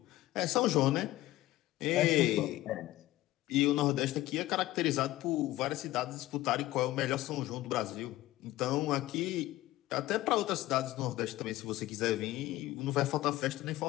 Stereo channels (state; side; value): quieter; right; 16.5 dB